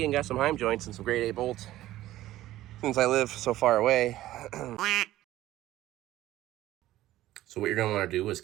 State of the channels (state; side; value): quieter; left; 14.9 dB